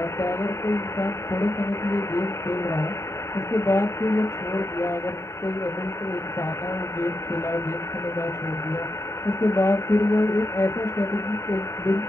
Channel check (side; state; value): right; late; 0.14 ms